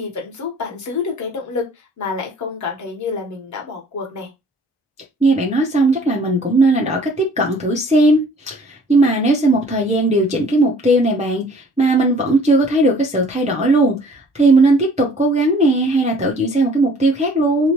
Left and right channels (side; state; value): both; normal; correlation 0.54